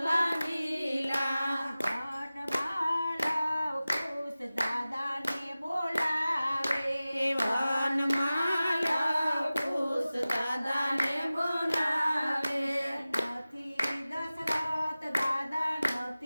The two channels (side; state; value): both; inverted; correlation -0.97